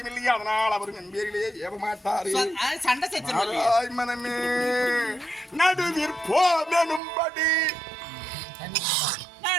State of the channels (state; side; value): drops out; left; at 7.0 s